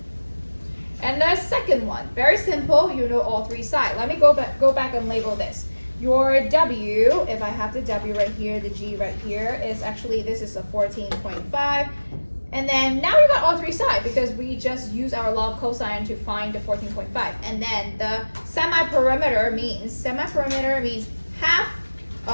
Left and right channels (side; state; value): both; inverted; correlation -1.00